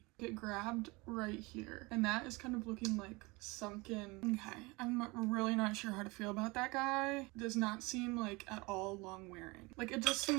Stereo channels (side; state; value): left; quieter; 24.7 dB